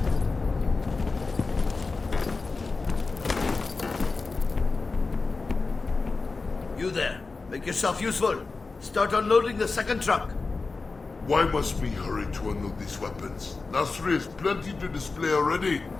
You there. Make yourself useful. Start unloading the second truck. Why must we hurry to unload these weapons? Nasri has plenty to display already.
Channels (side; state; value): right; quieter; 4.0 dB